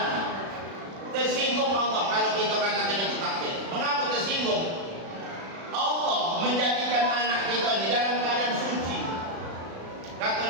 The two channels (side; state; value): left; late; 36 ms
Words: Tersinggung Allah kalau kita katakan itu takdir. Mengapa tersinggung? Allah menjadikan anak kita di dalam keadaan suci.